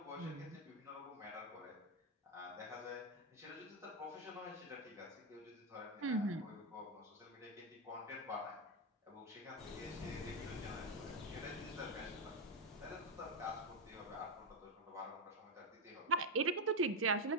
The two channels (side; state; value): both; normal; correlation 0.05